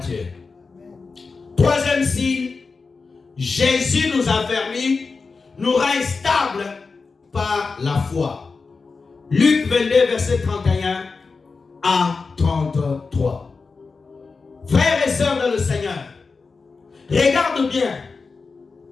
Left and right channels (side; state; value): right; quieter; 4.5 dB